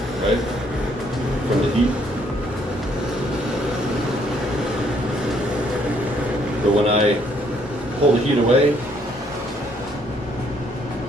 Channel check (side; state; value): both; normal; correlation 0.67